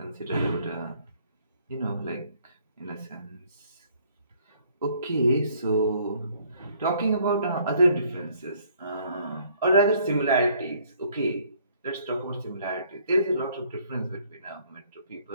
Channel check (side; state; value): both; inverted; correlation -0.62